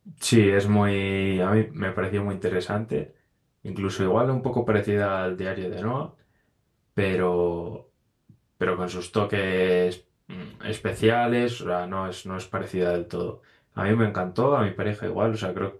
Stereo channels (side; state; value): both; identical; correlation 1.00